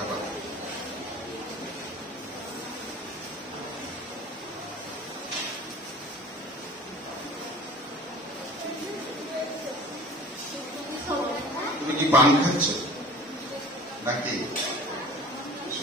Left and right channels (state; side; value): normal; both; correlation 0.43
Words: তুমি কি পান খাচ্ছ নাকি